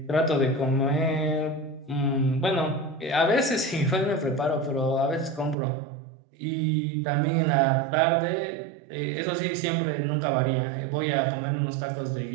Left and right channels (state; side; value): drops out; left; at 5.6 s